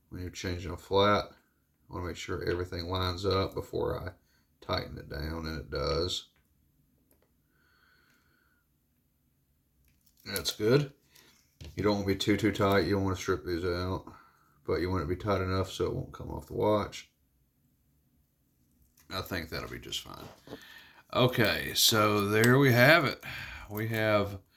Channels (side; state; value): both; identical; correlation 1.00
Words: When you're changing a flat, I want to make sure everything lines up before I tighten it down, and it does. That's good. You don't want to be too tight. You don't want to strip these out, but you want it to be tight enough so it won't come off the watch. I think that'll be just fine. Okay, so there we have it. We have